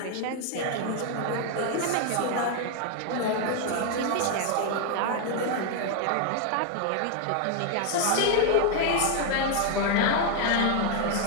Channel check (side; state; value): both; different; correlation 0.00